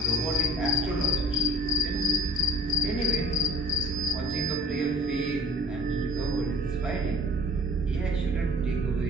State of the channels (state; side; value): normal; both; correlation 0.47